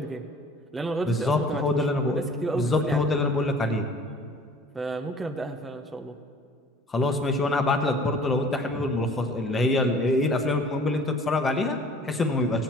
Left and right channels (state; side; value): normal; both; correlation 0.49